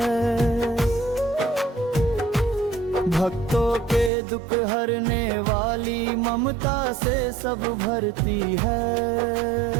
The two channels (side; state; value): left; drops out; at 4.1 s